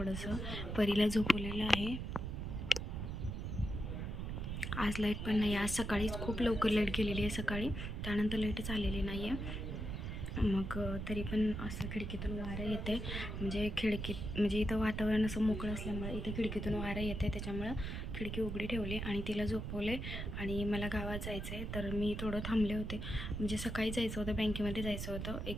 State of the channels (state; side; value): noise; right; rumble, 4 dB below the sound